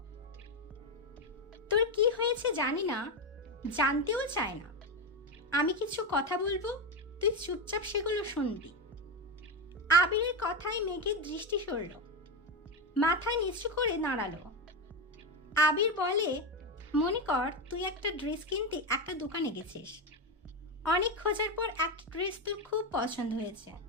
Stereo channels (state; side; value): normal; both; correlation 0.12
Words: তোর কি হয়েছে জানি না, জানতেও চায় না। আমি কিছু কথা বলবো, তুই চুপচাপ সেগুলো শুনবি। আবিরের কথায় মেঘের দৃষ্টি সরল, মাথা নিচু করে দাঁড়ালো। আবির বলে, মনে কর তুই একটা ড্রেস কিনতে একটা দোকানে গেছিস। অনেক খোঁজার পর একটা ড্রেস তোর খুব পছন্দ হয়েছে।